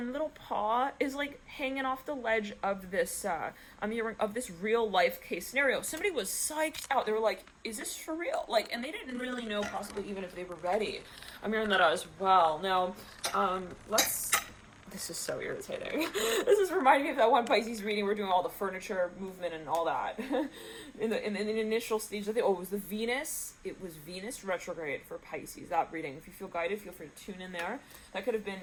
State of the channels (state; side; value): identical; both; correlation 1.00